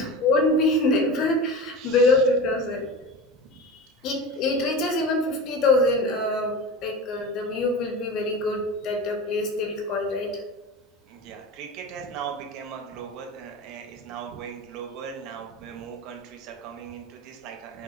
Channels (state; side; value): normal; both; correlation 0.30